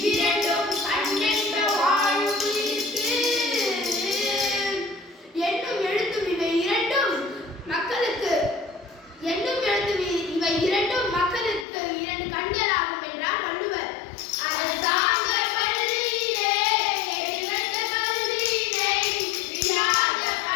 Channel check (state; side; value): drops out; right; at 11.7 s